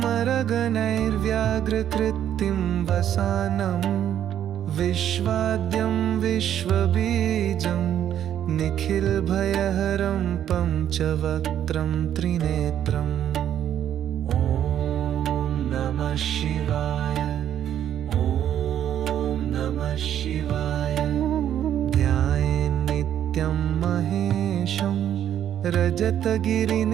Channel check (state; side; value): quieter; left; 10.3 dB